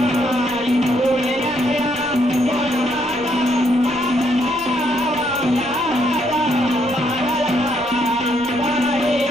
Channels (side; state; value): left; noise; rumble, 24 dB below the sound